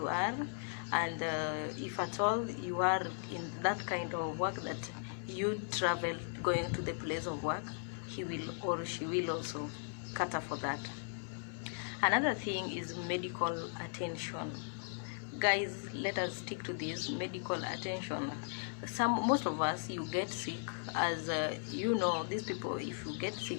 are, and if at all you are in that kind of work that you travel going to the place of work, he will or she will also cater for that. Another thing is medical attention. Guys, let us stick to this medical attention. Most of us, you get sick, as you know, these people, if you get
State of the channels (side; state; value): right; silent; 53 dB below the other